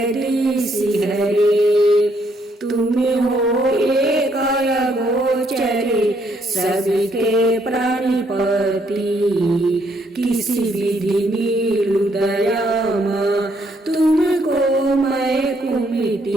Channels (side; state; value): both; normal; correlation 0.71